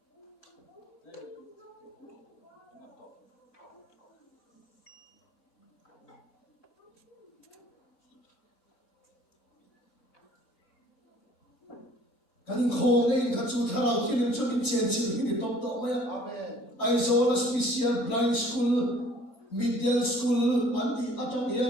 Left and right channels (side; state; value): both; normal; correlation 0.55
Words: cái linh khô này cái chú thà nào thiên cho mình chém chém thì to mày I saw a special blind school middle school anh đi ở trong